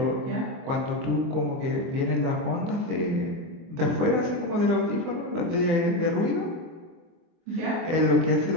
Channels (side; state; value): left; late; 24 ms